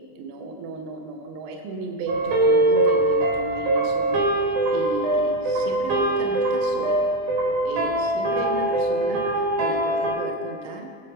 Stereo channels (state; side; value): late; left; 19 ms